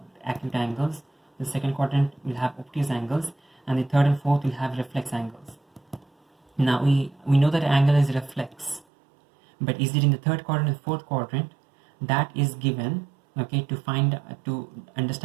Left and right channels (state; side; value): drops out; left; at 8.8 s